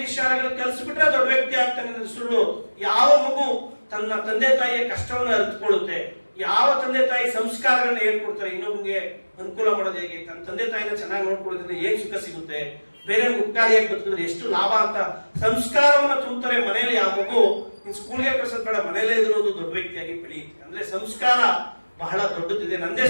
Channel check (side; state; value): both; inverted; correlation -1.00